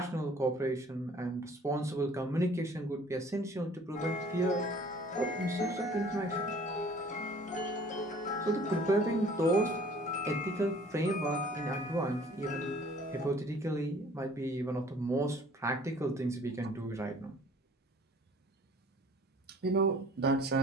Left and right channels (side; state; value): both; normal; correlation 0.52